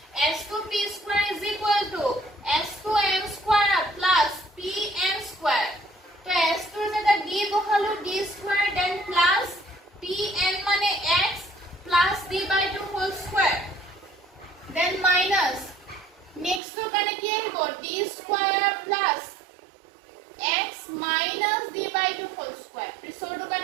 S2P square is equal to S2n square plus pn square তো S2 যেটা d বহালো d square then plus pn মানে x plus d by 2 whole square then minus next to কানে কি আহিব d square plus x minus d by 2 whole square ৰিসোৰ্টো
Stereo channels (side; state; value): left; drops out; at 16.6 s